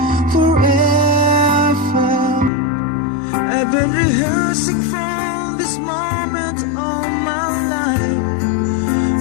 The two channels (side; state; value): right; drops out; at 2.5 s